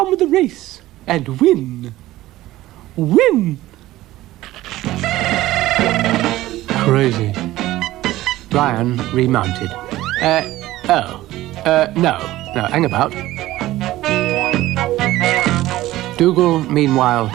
with the race and win. Win! Crazy. Brian remounted. No, hang about. Dougal, meanwhile,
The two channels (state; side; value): quieter; left; 16.2 dB